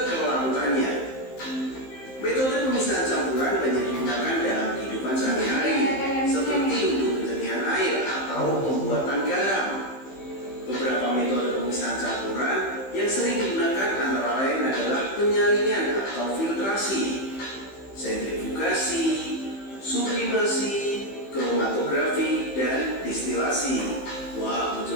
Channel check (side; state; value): right; late; 15 ms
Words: kelarutannya. Metode pemisahan campuran banyak digunakan dalam kehidupan sehari-hari, seperti untuk penjernihan air atau pembuatan garam. Beberapa metode pemisahan campuran yang sering digunakan antara lain adalah penyaringan atau filtrasi, sentrifugasi, sublimasi, kromatografi, dan distilasi. Wah,